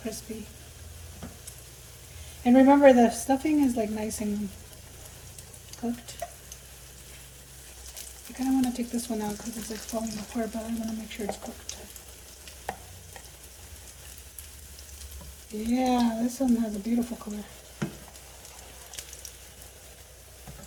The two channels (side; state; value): both; identical; correlation 1.00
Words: And remember the stuffing is like nice and cooked. I kind of want to take this one out because it's like falling apart, but I want to make sure it's cooked. Yeah, this one has a beautiful color.